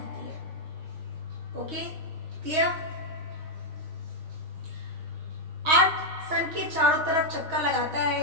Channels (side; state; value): left; late; 6.3 ms